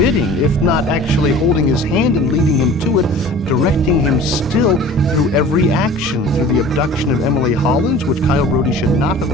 if not actually holding his hand and leading him to it, directing him still through every action, through the abduction of Emily Hollins, which Kyle Brody should not have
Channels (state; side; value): normal; both; correlation 0.43